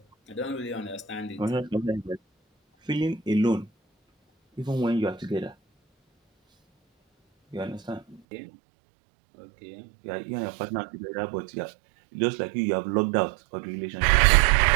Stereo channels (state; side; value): drops out; left; at 8.2 s